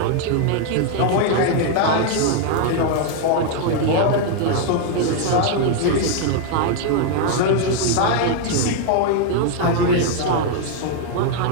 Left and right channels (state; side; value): different; both; correlation 0.00